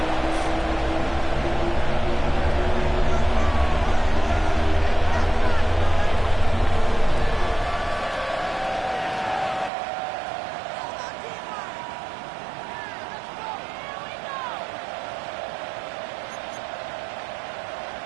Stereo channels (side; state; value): left; drops out; at 9.7 s